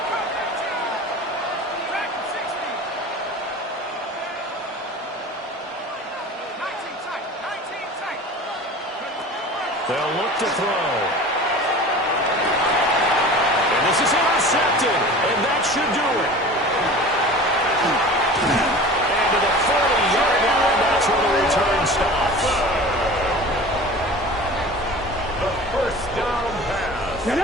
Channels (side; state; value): both; normal; correlation 0.38